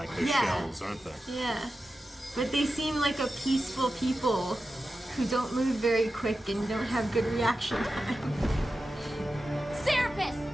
their Yeah. shells, aren't they? Yeah. But they seem like a peaceful people who don't move very quick and don't have good reaction time. Serapis!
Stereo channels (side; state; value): both; normal; correlation 0.92